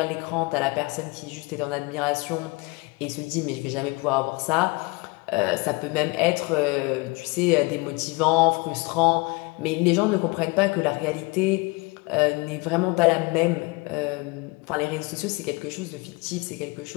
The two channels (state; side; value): quieter; right; 26.1 dB